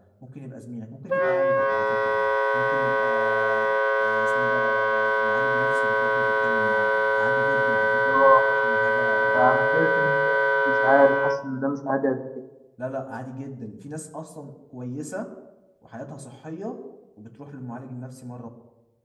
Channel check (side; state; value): both; identical; correlation 1.00